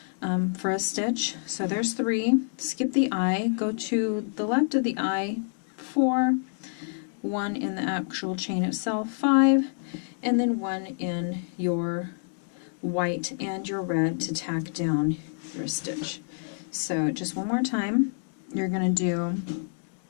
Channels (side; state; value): right; silent; 60 dB below the other